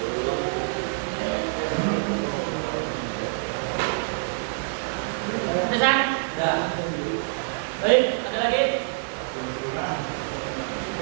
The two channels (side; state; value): left; silent; digital silence